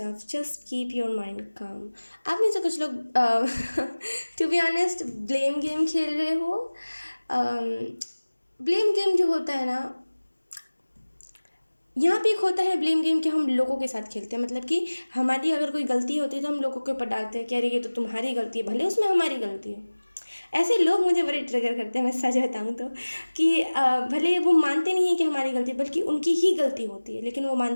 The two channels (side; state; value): both; inverted; correlation -1.00